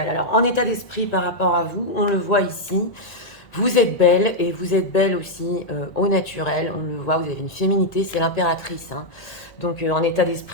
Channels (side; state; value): right; late; 1.9 ms